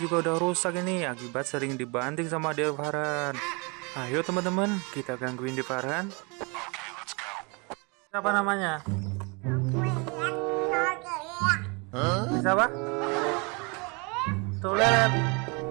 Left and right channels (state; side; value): quieter; left; 30.4 dB